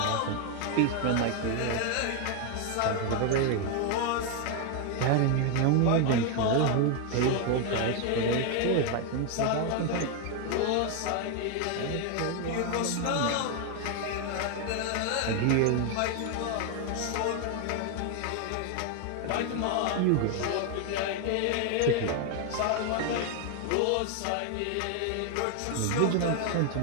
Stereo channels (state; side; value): different; both; correlation 0.01